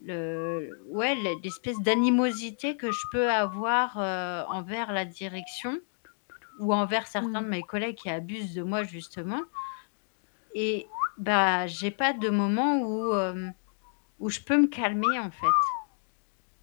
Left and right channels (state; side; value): silent; right; digital silence